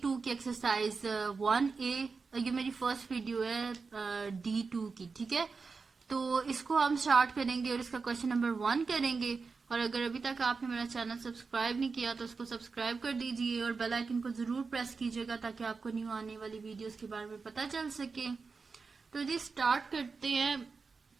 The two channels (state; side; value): quieter; left; 4.6 dB